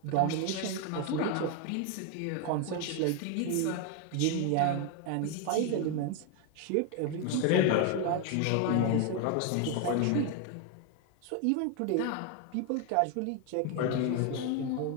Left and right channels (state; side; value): different; both; correlation 0.01